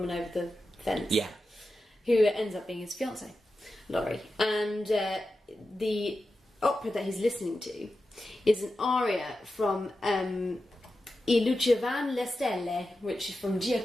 over the fence. Yeah. Who ends up being his fiancée, Laurie. And the opera that he's listening to is an aria from I Luce van le Stelle, which is from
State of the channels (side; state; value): both; normal; correlation 0.91